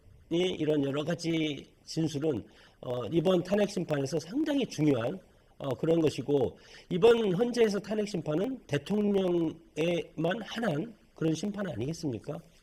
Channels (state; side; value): identical; both; correlation 1.00